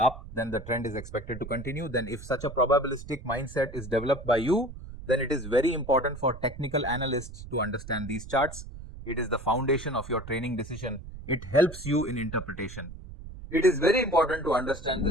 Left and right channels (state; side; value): noise; right; rumble, 13 dB below the sound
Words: then the trend is expected to continue. Then if such a probabilistic mindset is developed by you, then it is very important for technical analysts to understand these charts. It is the foundation of your training decision. It helps you in interpretation. It is very important to understand